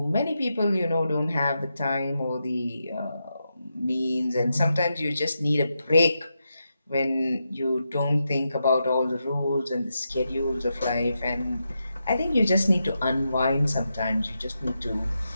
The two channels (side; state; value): both; inverted; correlation -0.86